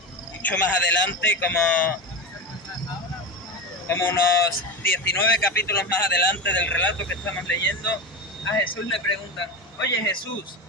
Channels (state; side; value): normal; both; correlation 0.21